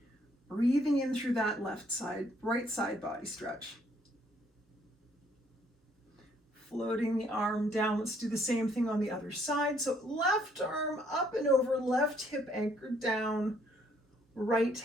Breathing in through that right side body stretch. Floating the arm down. Let's do the same thing on the other side. So left arm up and over, left hip anchored down, right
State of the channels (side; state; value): both; normal; correlation 0.67